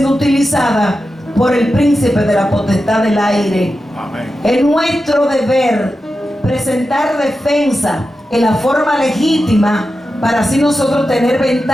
utilizadas por el príncipe de la potestad del aire. Amén. Es nuestro deber presentar defensa en la forma legítima para así nosotros tener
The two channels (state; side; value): normal; both; correlation 0.91